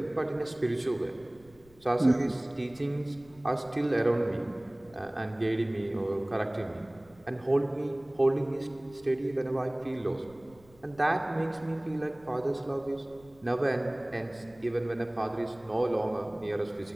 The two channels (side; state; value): left; noise; rumble, 26 dB below the sound